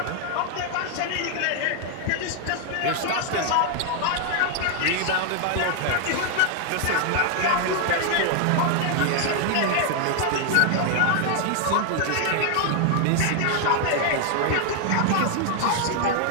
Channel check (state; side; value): different; both; correlation 0.00